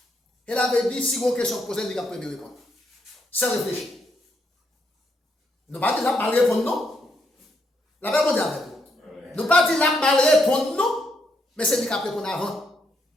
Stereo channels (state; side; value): normal; both; correlation 0.77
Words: Elle avait dit si vous avez une question posée, il y a premier répondre. Sans réfléchir. Nous ne pas dire la mal répondre non. La même chose avec vous. Nous ne pas dire la mal répondre non, mais c'est lui qui répondre avant.